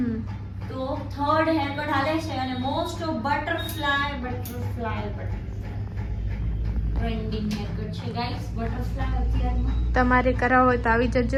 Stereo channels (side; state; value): both; identical; correlation 1.00